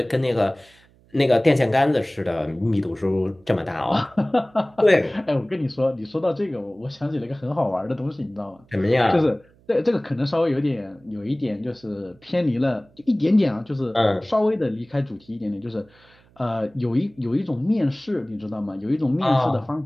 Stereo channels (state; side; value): noise; right; hum, 30 dB below the sound